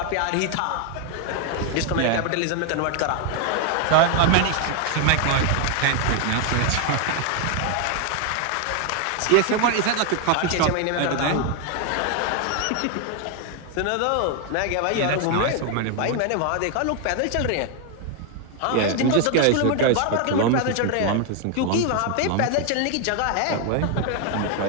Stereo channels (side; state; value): both; different; correlation 0.01